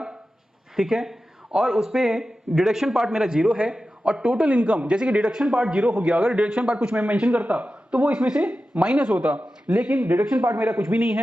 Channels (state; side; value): normal; both; correlation 0.93